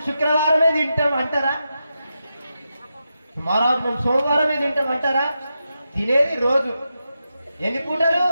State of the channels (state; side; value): inverted; both; correlation -0.88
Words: శుక్రవారమే తింటాం అంటారా? మహారాజ్ మేము సోమవారమే తింటాం అంటారా? తినేది రోజు ఎన్ని పూటలు?